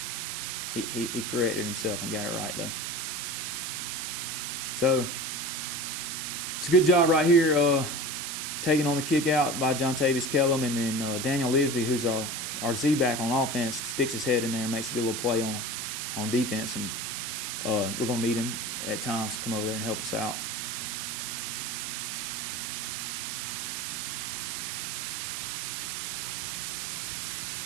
He corrected himself and got it right, though. So it's a good job right here taking on the kick out by John Tavis Kellum, and then Daniel Lisby, who's our our Z-back on offense sticks his head in there and makes a good little play on defense, and we're going to need him at times to come over there and help us out.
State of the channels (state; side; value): noise; right; hiss, 3 dB below the sound